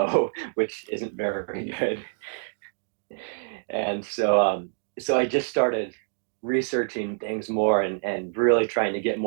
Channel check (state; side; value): silent; left; digital silence